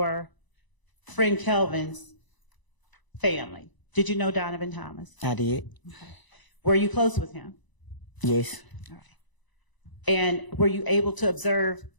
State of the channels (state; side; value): late; right; 1.0 ms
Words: friend Kelvin's family? Did you know Donovan Thomas? I did. Okay. Were you close with him? Yes. All right. And were you able to observe